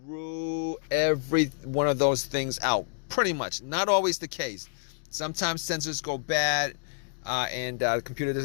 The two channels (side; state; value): right; silent; digital silence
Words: rule every one of those things out. Pretty much. Not always the case. Sometimes sensors go bad and the computer